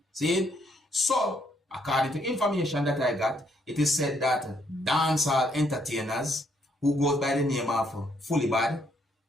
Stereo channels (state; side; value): normal; both; correlation 0.71